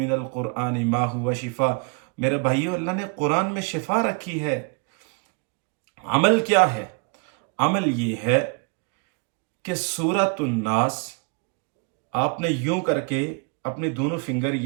الْقُرْآنِ مَا هُوَ شِفَاء۔ میرے بھائیوں، اللہ نے قرآن میں شفا رکھی ہے۔ عمل کیا ہے؟ عمل یہ ہے کہ سورۃ الناس آپ نے یوں کر کے اپنے دونوں فنگر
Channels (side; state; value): left; quieter; 33.6 dB